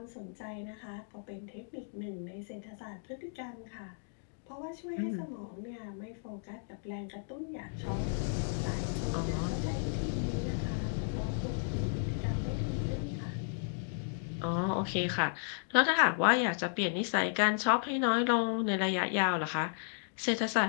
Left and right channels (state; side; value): silent; right; digital silence